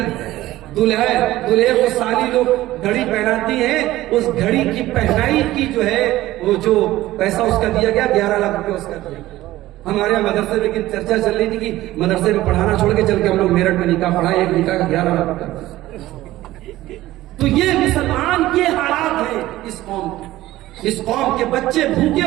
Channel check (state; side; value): quieter; left; 16.0 dB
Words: دلہے کو سالی لوگ گھڑی پہناتی ہیں، اس گھڑی کی پہنائی کی جو ہے وہ جو پیسہ اس کا دیا گیا 11 لاکھ روپے اس کا دیا گیا. ہمارے یہاں مدرسے میں لیکن چرچا چل رہی تھی کہ مدرسے میں پڑھانا چھوڑ کے چل کے ہم لوگ میرٹھ میں نکاح پڑھائے، ایک نکاح کا 11 لاکھ روپے. تو یہ مسلمان کے حالات ہیں اس قوم کے. اس قوم کے بچے